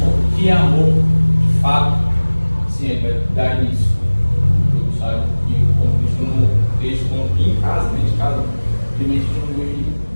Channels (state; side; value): inverted; both; correlation -1.00